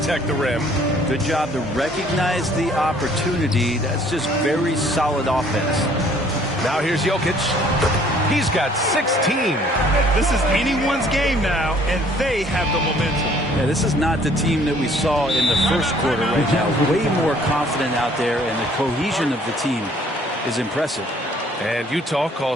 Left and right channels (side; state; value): both; normal; correlation 0.58